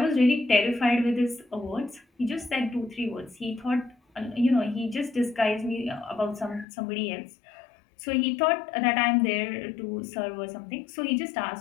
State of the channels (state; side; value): drops out; right; at 6.7 s